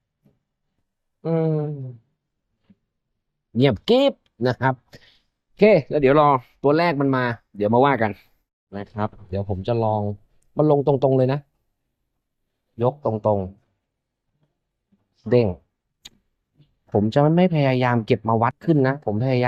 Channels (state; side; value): identical; both; correlation 1.00